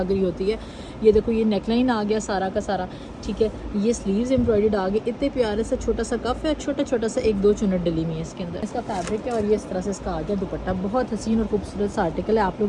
रही होती है। ये देखो ये नेकलाइन आ गया सारा का सारा, ठीक है। ये स्लीव्स एम्ब्रॉयडर्ड आ गए, इतने प्यारे से छोटा सा कफ है, छोटा छोटा सा एक दो चुनट डली हुई है इसके अंदर। इसका फैब्रिक है और ये इस तरह से इसका आ गया दुपट्टा। बहुत हसीन और खूबसूरत सा आर्टिकल है। आप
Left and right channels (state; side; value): identical; both; correlation 1.00